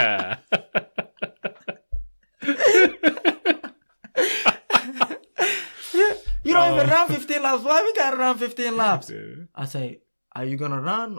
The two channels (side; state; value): both; inverted; correlation -1.00